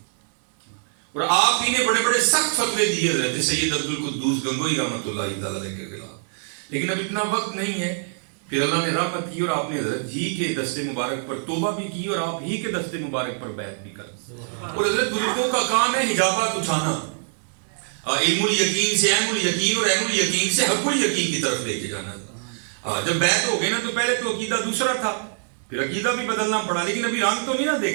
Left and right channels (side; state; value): left; silent; 63 dB below the other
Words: اور آپ ہی نے بڑے بڑے سخت فتوے دیے حضرت سید عبد القدوس گنگوہی رحمۃ اللہ تعالی کے خلاف. لیکن اب اتنا وقت نہیں ہے. پھر اللہ نے رحمت کی اور آپ نے حضرت ہی کے دست مبارک پر توبہ بھی کی اور آپ ہی کے دست مبارک پر بیعت بھی کر. اور حضرت بزرگوں کا کام ہے حجابات اٹھانا، علم الیقین سے عین الیقین اور عین الیقین سے حق الیقین کی طرف لے کے جانا. جب بیعت ہو گئے نا تو پہلے تو عقیدہ دوسرا تھا، پھر عقیدہ بھی بدلنا پڑا، لیکن ابھی رنگ تو نہیں نہ